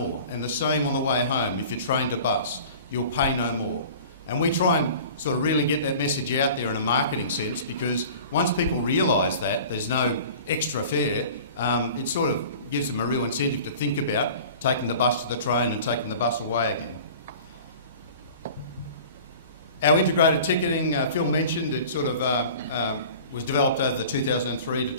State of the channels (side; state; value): both; inverted; correlation -0.42